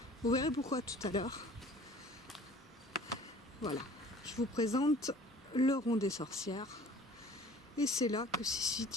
Vous verrez pourquoi tout à l'heure. Voilà, je vous présente le rond des sorcières. Et c'est là que s'est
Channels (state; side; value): normal; both; correlation 0.48